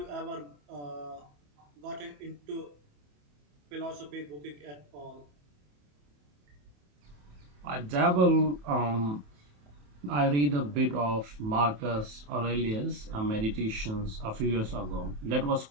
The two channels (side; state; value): left; late; 28 ms